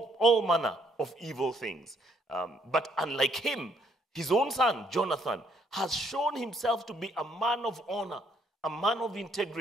manner of evil things. But unlike him, his own son, Jonathan, has shown himself to be a man of honor, a man of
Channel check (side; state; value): both; normal; correlation 0.69